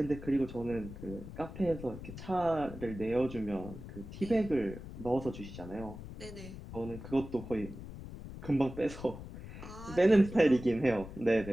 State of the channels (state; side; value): noise; left; rumble, 12 dB below the sound